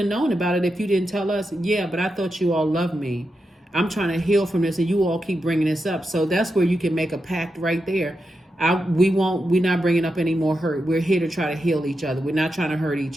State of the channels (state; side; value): normal; both; correlation 0.87